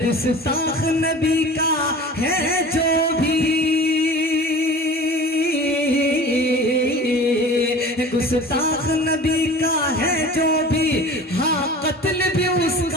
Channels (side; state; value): both; normal; correlation 0.40